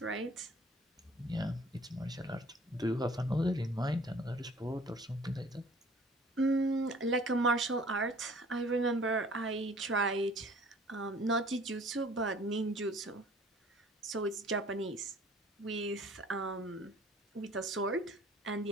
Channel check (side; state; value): both; normal; correlation 0.51